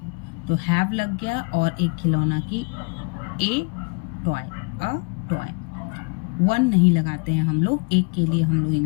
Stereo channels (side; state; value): right; quieter; 32.6 dB